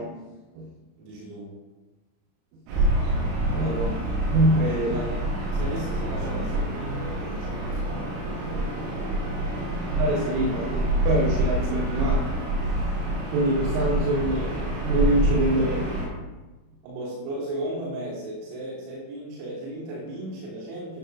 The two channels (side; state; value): left; late; 37 ms